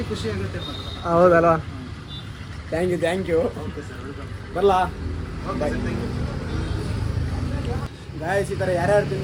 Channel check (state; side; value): identical; both; correlation 1.00